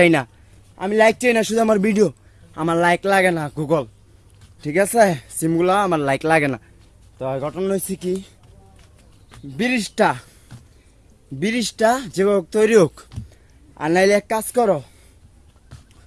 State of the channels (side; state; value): both; identical; correlation 1.00